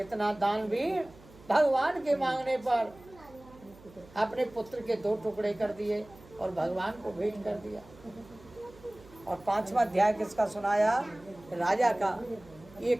दानवीर भगवान के मांगने पर अपने पुत्र के 2 टुकड़े कर दिए और भगवान को भेंट कर दिया। और 5वां अध्याय किसका सुनाया? राजा का। ये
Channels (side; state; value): right; noise; hum, 23 dB below the sound